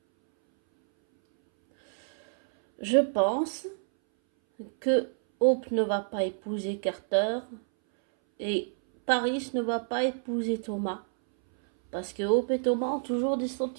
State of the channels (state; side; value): silent; left; 59 dB below the other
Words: Je pense que Hope ne va pas épouser Carter et Paris ne va pas épouser Thomas. Parce que Hope et Thomas ont toujours des